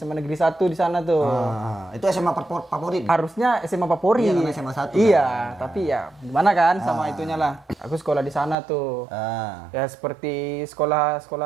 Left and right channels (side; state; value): left; drops out; at 8.6 s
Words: di sana tuh. Itu SMA favorit. Harusnya SMA favorit. Iya, karena SMA 1 Iya, kan. tapi ya gimana kan sama itunya lah. Aku sekolah di sana tuh. Ya seperti